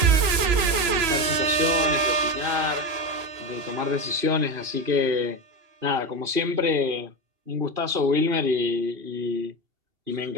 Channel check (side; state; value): left; late; 3.0 ms